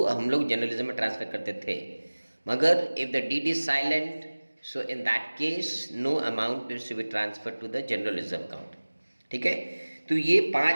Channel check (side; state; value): both; inverted; correlation -1.00